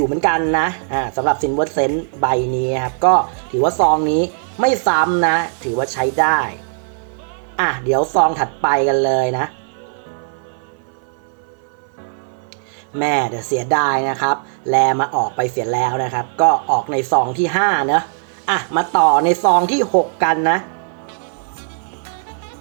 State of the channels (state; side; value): silent; left; 57 dB below the other